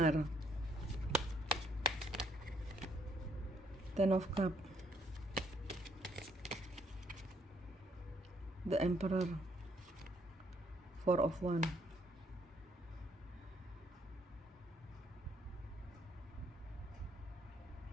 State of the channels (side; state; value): both; normal; correlation 0.69